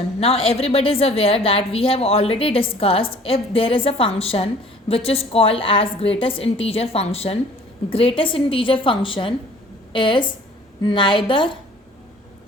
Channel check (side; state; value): both; normal; correlation 0.52